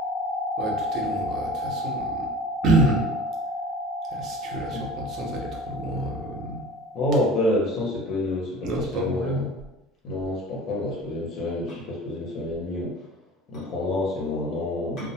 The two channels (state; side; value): normal; both; correlation 0.41